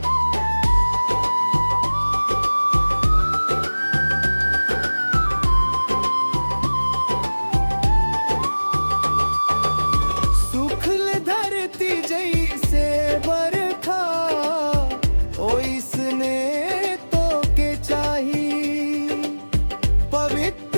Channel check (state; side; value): inverted; both; correlation -1.00